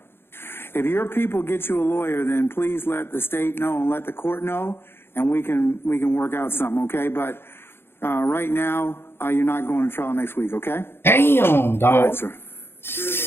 If your people get you a lawyer, then please let the state know and let the court know, and we can work out something, okay? But right now, you're not going to trial next week, okay? Damn, dog. All right, sir.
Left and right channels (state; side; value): late; right; 0.11 ms